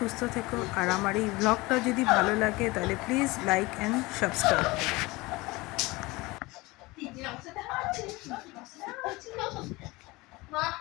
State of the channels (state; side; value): quieter; right; 22.2 dB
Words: থেকো। আর আমার এই ব্লগটা যদি ভালো লাগে তাহলে প্লিজ লাইক অ্যান্ড সাবস্ক্রাইব